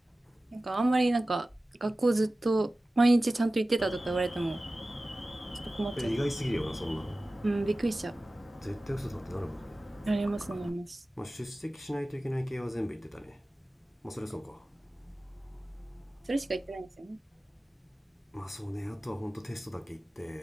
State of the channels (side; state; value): both; normal; correlation 0.96